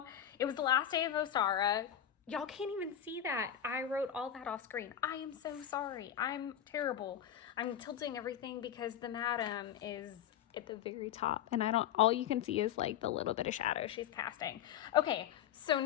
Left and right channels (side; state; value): right; quieter; 10.1 dB